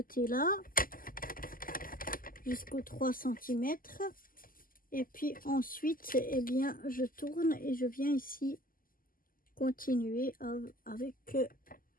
jusqu'aux 3 cm. Et puis ensuite, eh bien, je tourne et je viens ici continuer avec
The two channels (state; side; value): late; right; 0.41 ms